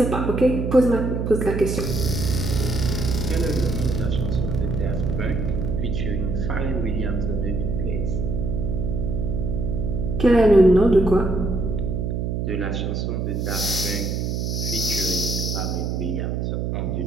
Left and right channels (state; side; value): noise; right; hum, 1 dB below the sound